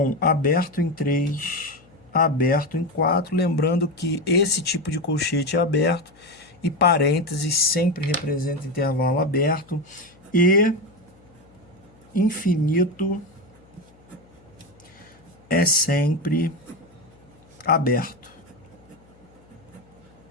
aberto em 3, aberto em 4. Lembrando que esse tipo de colchete é aberto e parênteses sempre representa intervalo aberto e infinito é sempre aberto.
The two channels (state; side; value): noise; left; hum, 28 dB below the sound